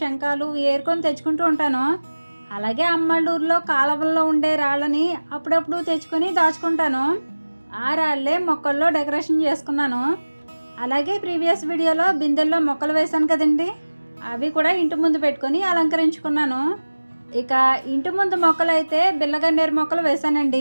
ఏరుకొని తెచ్చుకుంటూ ఉంటాను. అలాగే అమ్మళ్ళూరులో కాలువల్లో ఉండే రాళ్ళని అప్పుడప్పుడు తెచ్చుకొని దాచుకుంటాను. ఆ రాళ్ళే మొక్కల్లో డెకరేషన్ చేసుకున్నాను. అలాగే ప్రీవియస్ వీడియోలో బిందెల్లో మొక్కలు వేశాను కదండి, అవి కూడా ఇంటి ముందు పెట్టుకొని అలంకరించుకున్నాను. ఇక ఇంటి ముందు మొక్కలు అయితే బిల్లగన్నేరు మొక్కలు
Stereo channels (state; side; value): inverted; both; correlation -1.00